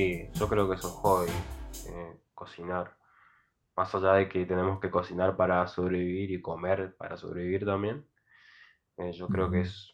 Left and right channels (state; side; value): identical; both; correlation 1.00